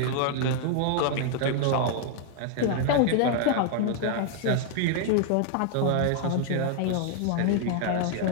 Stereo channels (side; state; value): both; different; correlation 0.00